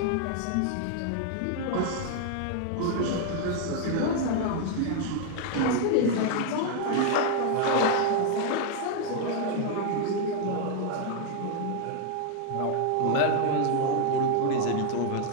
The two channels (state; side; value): different; both; correlation 0.00